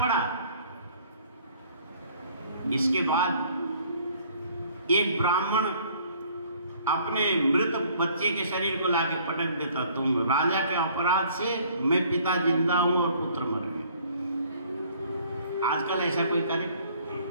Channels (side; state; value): both; inverted; correlation -0.57